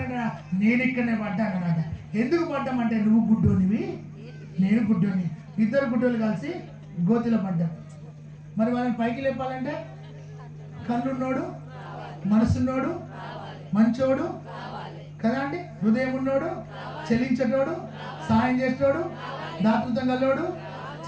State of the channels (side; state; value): both; identical; correlation 1.00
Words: నేను ఇక్కడనే పడ్డానమాట. ఎందుకు పడ్డామంటే నువ్వు గుడ్డోనివి, నేను గుడ్డోని, ఇద్దరు గుడ్డోలు కలిసి గోతిలో పడ్డాం. మరి వాళ్ళని పైకి లేపాలంటే కన్నున్నోడు, మనసున్నోడు, మంచోడు కదా అండి, హృదయం ఉన్నోడు, చెల్లించేటోడు, సాయం చేసేటోడు, దాతృత్వం గల్లోడు,